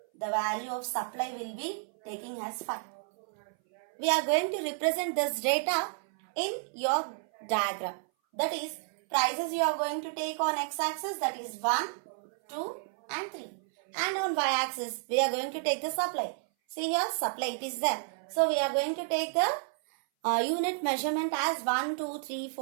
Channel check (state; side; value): silent; left; 57 dB below the other